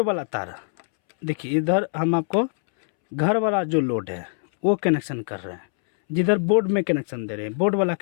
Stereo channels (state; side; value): silent; right; 63 dB below the other